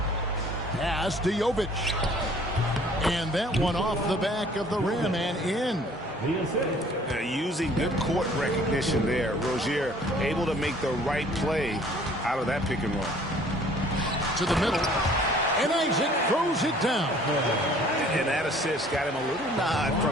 Pass to Jovic. And that one off the back of the rim and in. Using good court recognition there. Rozier able to make the right play out of that pick and roll. To the middle. And Isaac throws it down. And that assist got him a little nod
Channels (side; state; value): both; normal; correlation 0.54